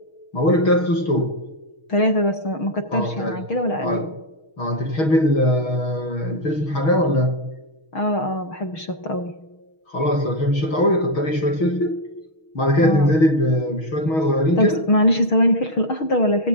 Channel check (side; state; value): right; late; 6.4 ms